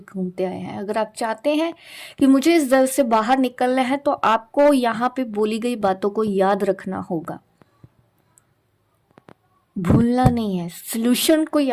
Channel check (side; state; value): both; identical; correlation 1.00